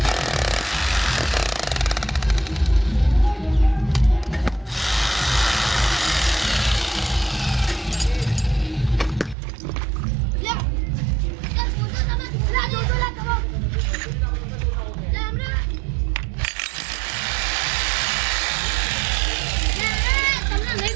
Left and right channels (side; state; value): left; drops out; at 9.3 s